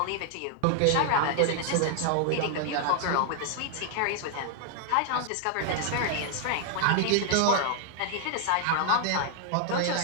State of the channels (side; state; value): both; different; correlation 0.00